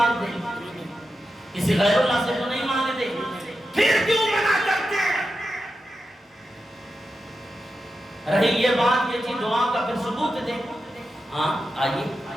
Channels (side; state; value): both; normal; correlation 0.90